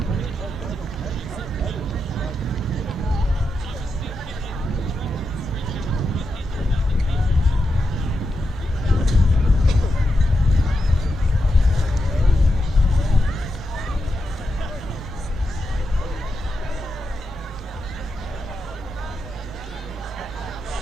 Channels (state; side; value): normal; both; correlation 0.87